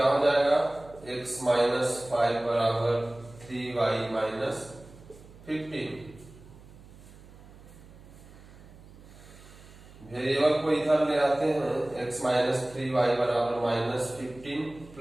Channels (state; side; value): noise; right; hum, 21 dB below the sound